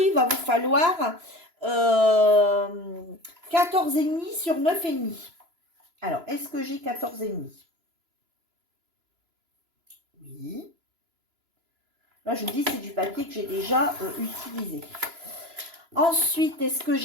va vous falloir 14,5 sur 9,5. Alors, est-ce que j'ai 14,5? Oui. Là, je vous dis, c'est du papier que j'ai déjà utilisé. Ensuite, est-ce que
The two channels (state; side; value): late; left; 3.0 ms